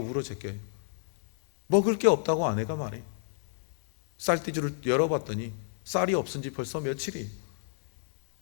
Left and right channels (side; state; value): right; silent; digital silence